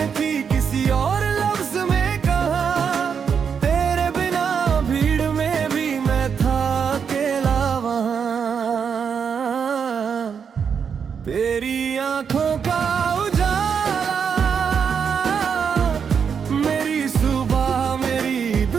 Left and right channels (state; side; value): quieter; left; 6.8 dB